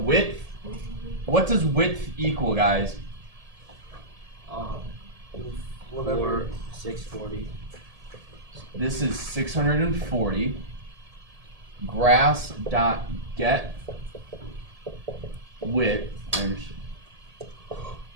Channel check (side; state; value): left; late; 1.7 ms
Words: what does width equal, guys? whatever. 640. This is 640. Grass dot get width. I understand.